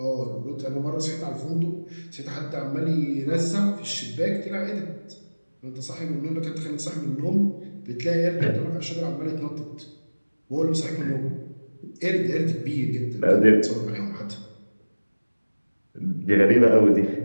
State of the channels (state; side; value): inverted; both; correlation -1.00